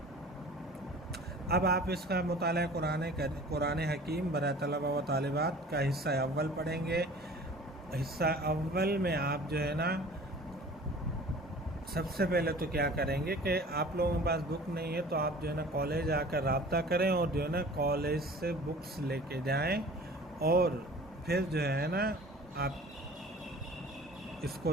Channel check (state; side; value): normal; both; correlation 0.45